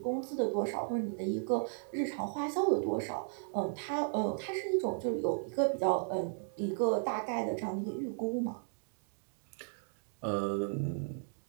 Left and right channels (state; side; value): silent; left; digital silence